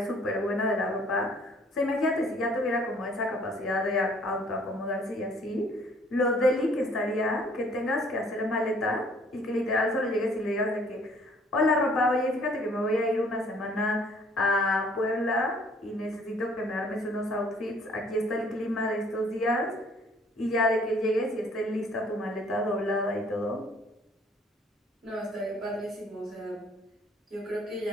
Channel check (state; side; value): normal; both; correlation 0.59